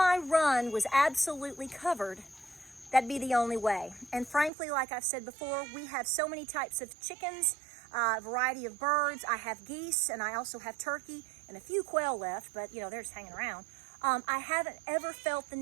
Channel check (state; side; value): drops out; left; at 4.5 s